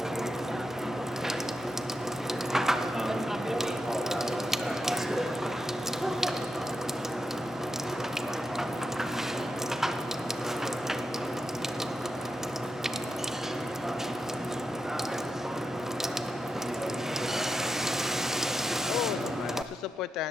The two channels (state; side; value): normal; both; correlation 0.86